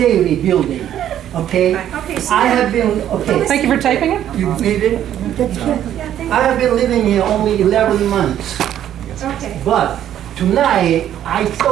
building, okay? Okay, so. I have been, okay. Thank you for taping it. You need it? Yeah, thank I have been living here only 11 months, Okay. But tonight, I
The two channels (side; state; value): left; quieter; 11.0 dB